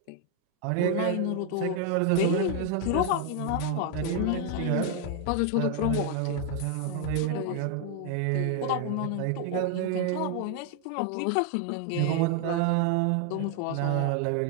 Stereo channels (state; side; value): different; both; correlation 0.00